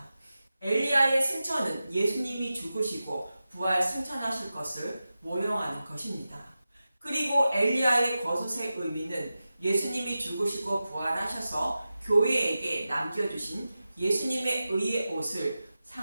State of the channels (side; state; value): both; inverted; correlation -0.93